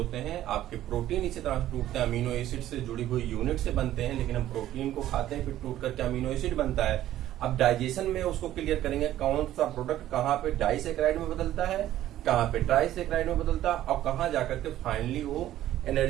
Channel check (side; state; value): left; quieter; 13.2 dB